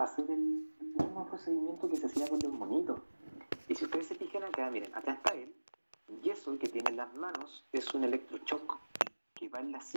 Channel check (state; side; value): inverted; both; correlation -1.00